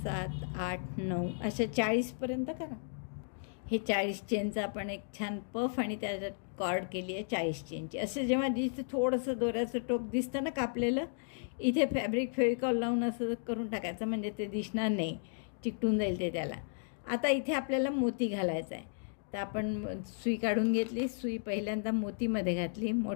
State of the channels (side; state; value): right; silent; digital silence